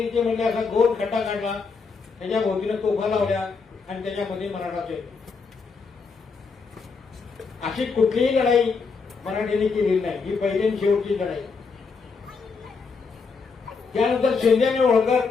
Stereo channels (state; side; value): quieter; right; 4.9 dB